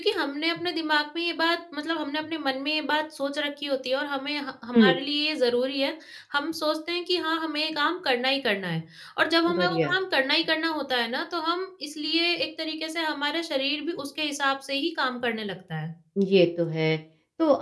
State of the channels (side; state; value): both; identical; correlation 1.00